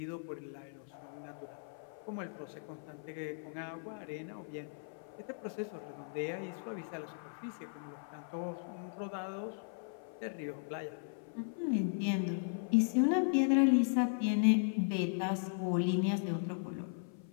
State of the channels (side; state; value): right; silent; 53 dB below the other